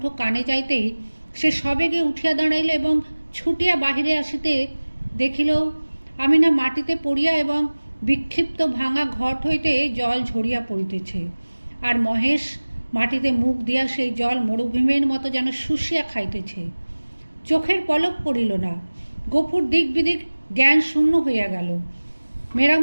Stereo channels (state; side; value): inverted; both; correlation -1.00